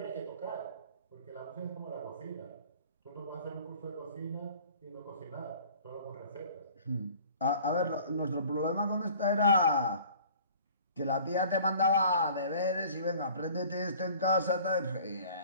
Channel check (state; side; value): inverted; both; correlation -0.50